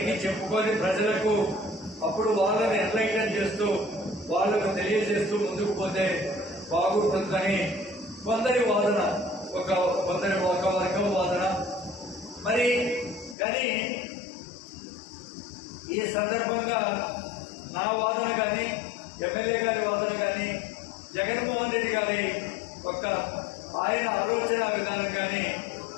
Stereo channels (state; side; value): drops out; right; at 13.4 s